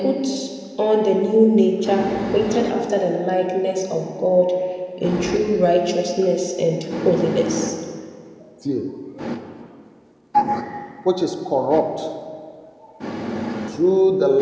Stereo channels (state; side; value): identical; both; correlation 1.00